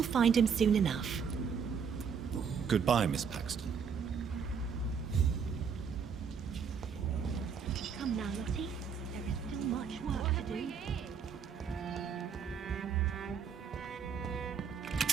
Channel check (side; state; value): left; quieter; 6.6 dB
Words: find him soon enough. Goodbye, Miss Paxton. Come now, Lottie. There is still much work to do.